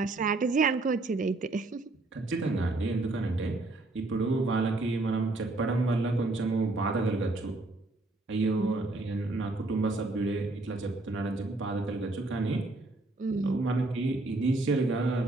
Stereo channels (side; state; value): left; quieter; 3.0 dB